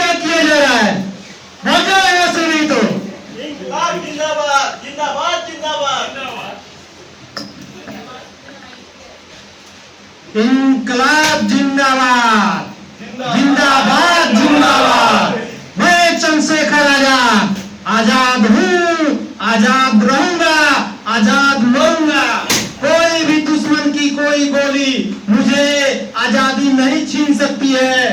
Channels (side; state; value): both; identical; correlation 1.00